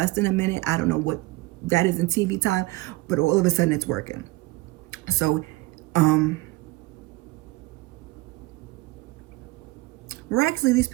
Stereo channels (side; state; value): left; quieter; 21.0 dB